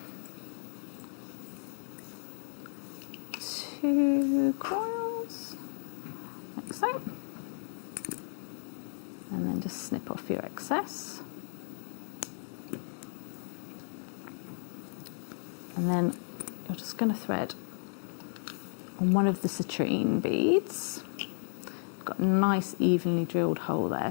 2 coils, like so. And then just snip off your excess. And then you're just going to thread on one of the citrine beads. Got a nice evenly drilled hole there,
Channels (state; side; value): silent; right; digital silence